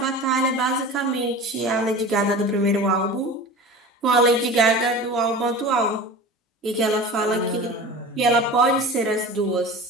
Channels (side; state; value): both; normal; correlation 0.35